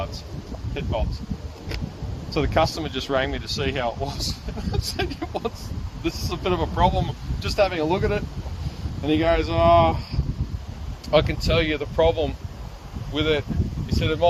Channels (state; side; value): identical; both; correlation 1.00